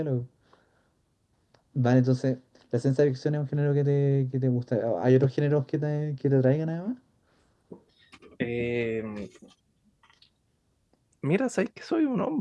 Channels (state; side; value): identical; both; correlation 1.00